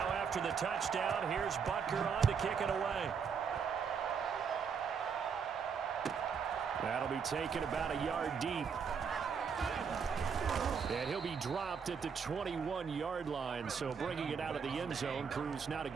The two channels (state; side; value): quieter; left; 6.3 dB